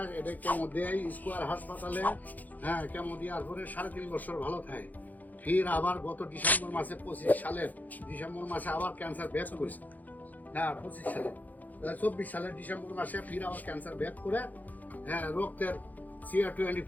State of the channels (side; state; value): right; late; 0.081 ms